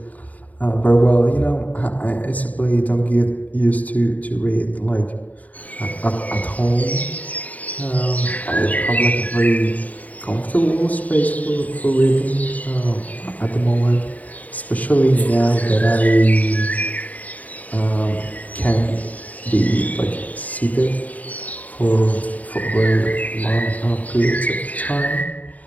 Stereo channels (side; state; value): right; late; 0.073 ms